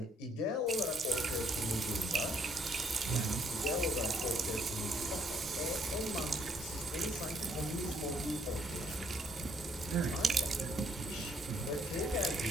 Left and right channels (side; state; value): both; normal; correlation 0.69